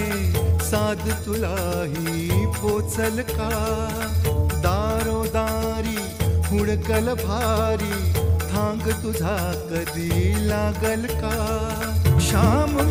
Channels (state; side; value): identical; both; correlation 1.00